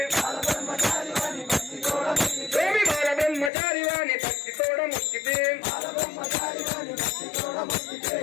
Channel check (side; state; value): right; drops out; at 3.5 s